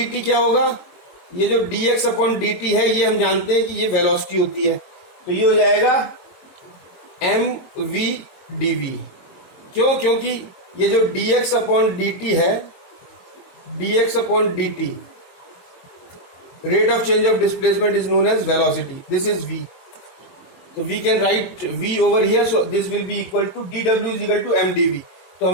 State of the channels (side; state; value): right; late; 22 ms